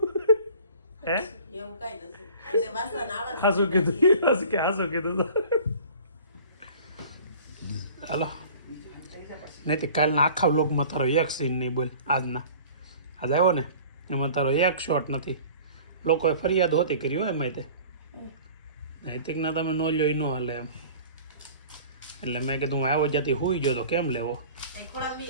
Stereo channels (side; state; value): both; inverted; correlation -0.45